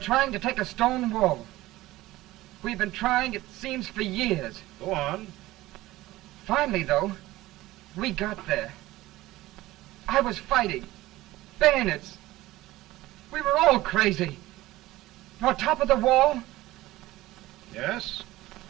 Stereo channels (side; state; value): left; quieter; 17.4 dB